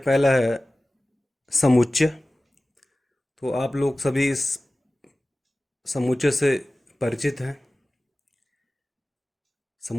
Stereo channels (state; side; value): normal; both; correlation 0.97